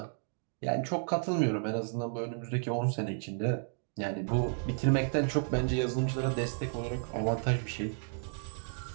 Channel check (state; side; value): silent; left; digital silence